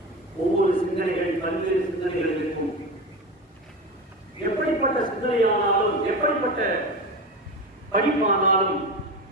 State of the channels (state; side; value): normal; both; correlation 0.23